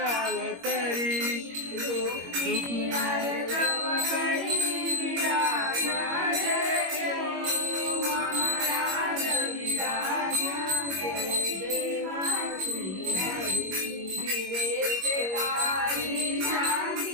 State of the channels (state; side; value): late; left; 21 ms